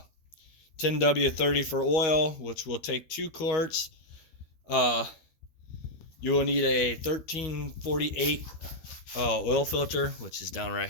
for oil, which will take 2 quarts. Uh, you will need a 1348 oil filter, which is down right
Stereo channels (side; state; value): right; late; 12 ms